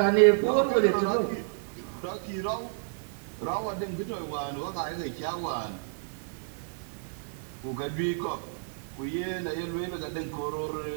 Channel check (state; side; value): silent; left; digital silence